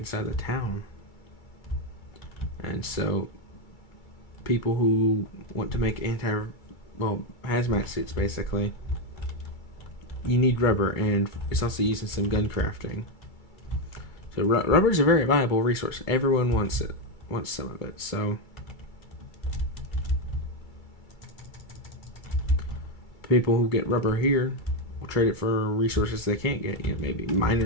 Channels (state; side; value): late; right; 2.3 ms